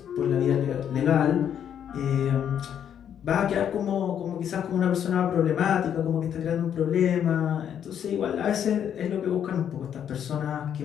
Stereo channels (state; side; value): quieter; right; 9.1 dB